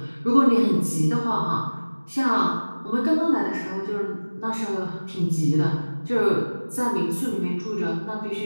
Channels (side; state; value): both; inverted; correlation -1.00